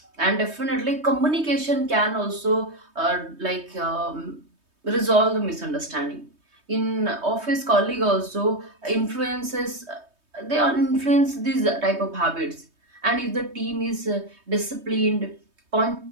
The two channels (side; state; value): left; late; 3.2 ms